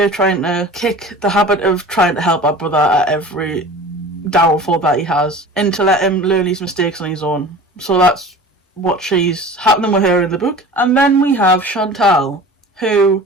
trying to kick the habit of trying to help our brother at every downfall that he has and to let him learn his mistakes on his own. So that's what she's happening with her in the book. And then we have Chantal, who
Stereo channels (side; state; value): both; normal; correlation 0.39